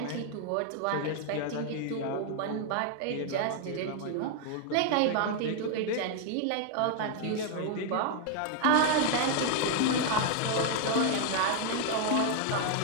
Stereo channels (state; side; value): different; both; correlation 0.00